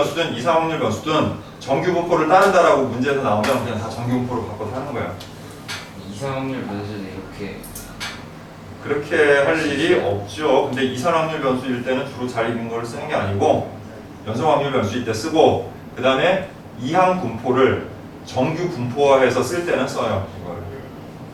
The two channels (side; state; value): both; identical; correlation 1.00